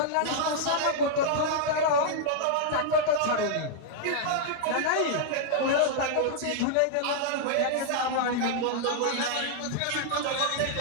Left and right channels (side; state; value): both; different; correlation -0.01